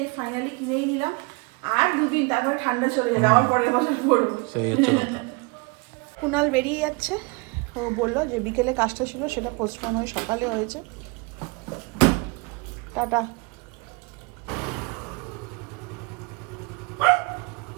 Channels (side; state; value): left; quieter; 29.8 dB